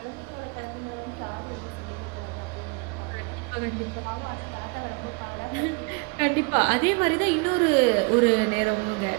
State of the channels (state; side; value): quieter; left; 30.4 dB